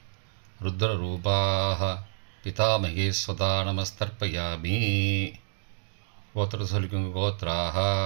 ருத்ரரூபாஹ பிதாமகி ஸ்வதா நமஸ்தர்ப்பயாமி. கோத்திரத்தை சொல்லிக்கோங்கோ. கோத்ராஹா.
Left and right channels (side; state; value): left; silent; digital silence